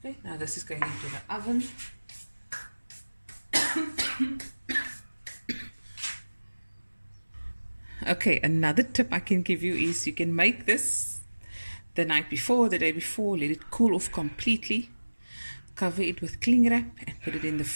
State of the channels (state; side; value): inverted; both; correlation -1.00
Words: now this is going into the oven. Okay, another tip I can give you is you can make this the night before, the day before, let it cool off completely. Cover it with cling wrap and put it in the